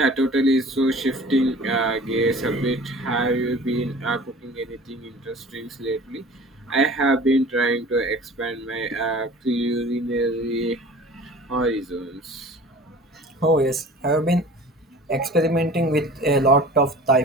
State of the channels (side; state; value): both; normal; correlation 0.43